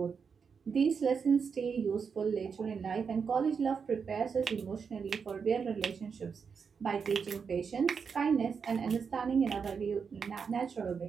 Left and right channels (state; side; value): quieter; left; 6.0 dB